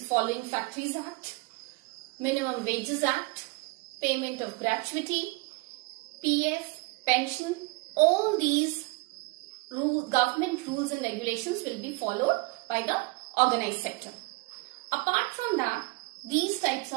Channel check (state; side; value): quieter; left; 25.7 dB